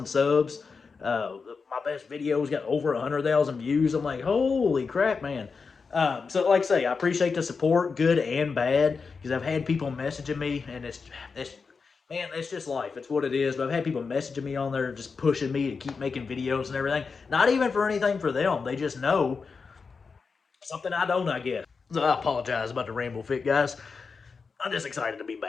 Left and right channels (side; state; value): right; quieter; 5.0 dB